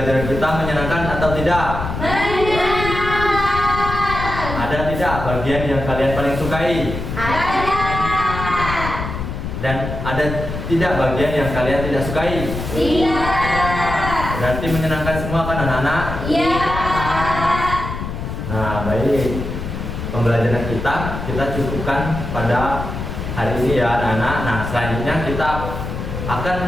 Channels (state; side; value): noise; left; rumble, 6 dB below the sound